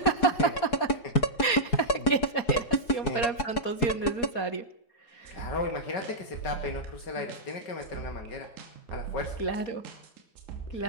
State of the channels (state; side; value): late; right; 4.2 ms